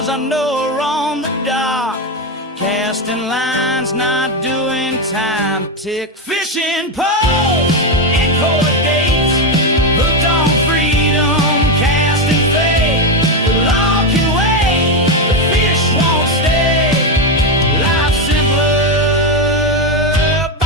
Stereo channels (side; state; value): both; normal; correlation 0.09